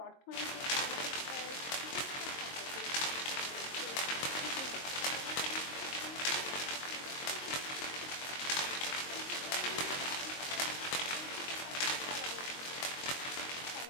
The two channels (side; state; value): right; late; 22 ms